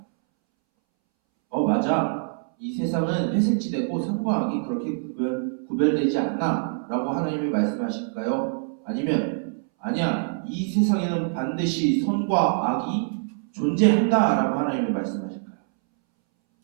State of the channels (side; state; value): left; silent; 62 dB below the other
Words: 맞아. 이 세상은 회색지대고 선과 악이 그렇게 구별되지 않나? 라고 하나님이 말씀하실까요? 아니면 아니야. 이 세상에는 반드시 선과 악이 존재한다. 라고 하나님이 말씀하실까요?